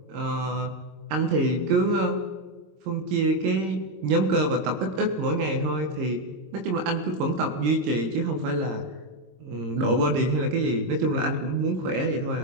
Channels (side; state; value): left; late; 22 ms